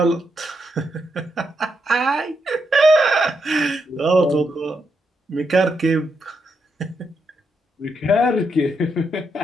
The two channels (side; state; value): both; normal; correlation 0.81